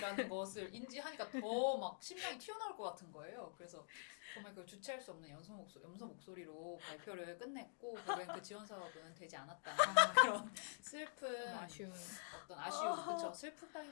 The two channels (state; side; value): silent; right; digital silence